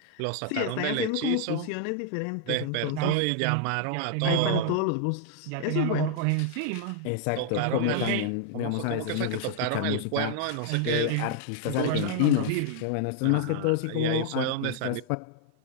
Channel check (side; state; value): both; different; correlation 0.00